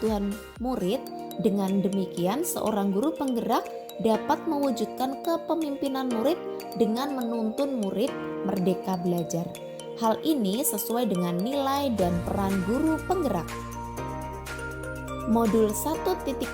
murid, dengan demikian seorang guru penggerak dapat mewujudkan kepemimpinan murid dengan menuntun murid merdeka belajar. Hal ini sesuai dengan nilai dan peran guru penggerak. Modul 1.3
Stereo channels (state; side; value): identical; both; correlation 1.00